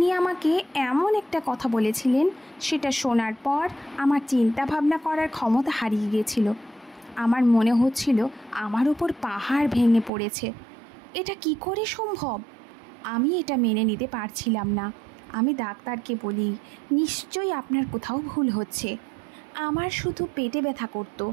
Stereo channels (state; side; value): drops out; left; at 10.1 s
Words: আমাকে এমন একটা কথা বলেছিলেন, সেটা শোনার পর আমার চিন্তা ভাবনা করার ক্ষমতা হারিয়ে গিয়েছিল। আমার মনে হচ্ছিল আমার উপর পাহাড় ভেঙে পড়েছে। এটা কি করে সম্ভব? আমি এটা মেনে নিতে পারছিলাম না। আমি ডাক্তারকে বলি, নিশ্চয়ই আপনার কোথাও ভুল হচ্ছে। আমার শুধু পেটে ব্যথা করতো।